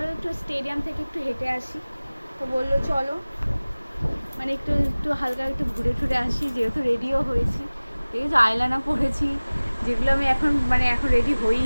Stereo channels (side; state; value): both; inverted; correlation -1.00